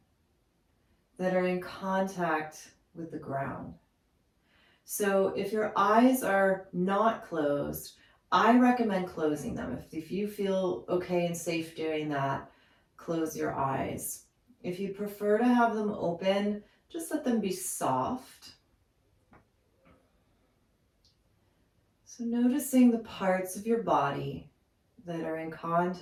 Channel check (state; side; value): identical; both; correlation 1.00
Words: that are in contact with the ground. So if your eyes are not closed, I recommend closing them. If you feel okay and safe doing that, close your eyes. If you prefer to have them open, just let them be soft. So noticing the parts of your body that are in